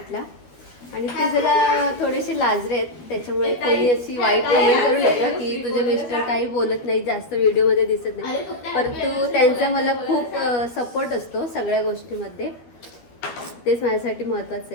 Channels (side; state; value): right; late; 12 ms